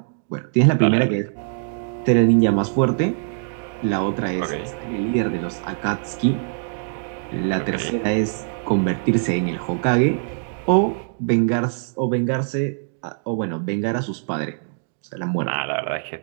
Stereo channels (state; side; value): silent; left; digital silence